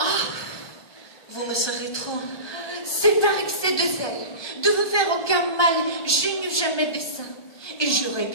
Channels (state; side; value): late; right; 1.2 ms